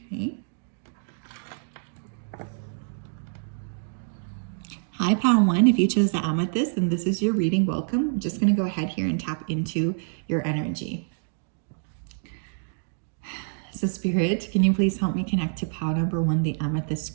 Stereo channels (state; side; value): silent; left; digital silence